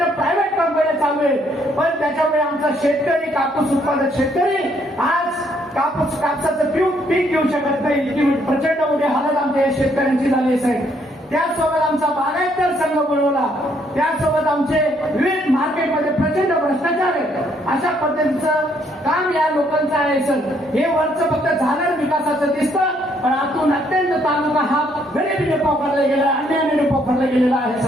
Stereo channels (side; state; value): both; normal; correlation 0.69